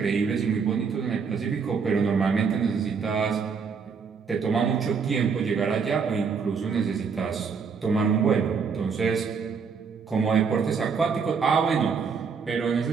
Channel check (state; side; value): quieter; left; 5.7 dB